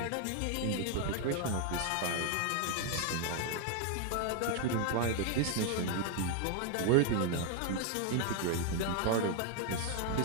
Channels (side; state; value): both; different; correlation 0.01